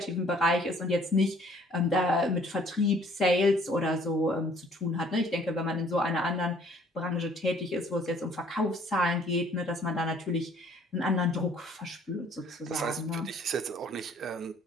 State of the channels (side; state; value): both; normal; correlation 0.58